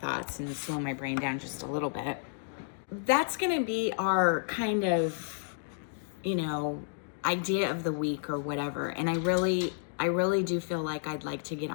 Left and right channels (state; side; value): silent; right; digital silence